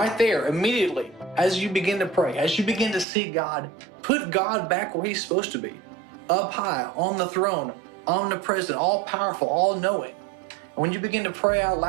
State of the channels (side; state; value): left; drops out; at 3.1 s